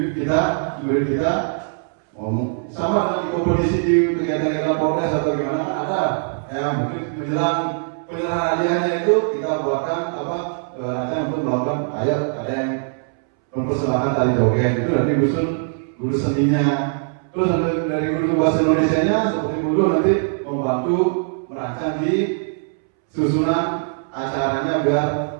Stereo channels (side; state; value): left; silent; 65 dB below the other